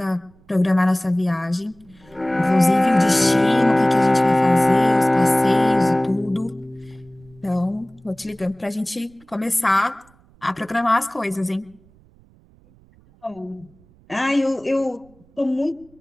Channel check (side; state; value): right; noise; rumble, 30 dB below the sound